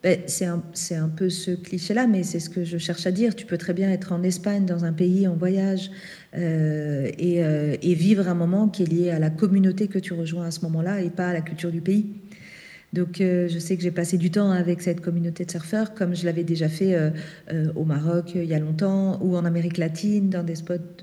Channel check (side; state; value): both; identical; correlation 1.00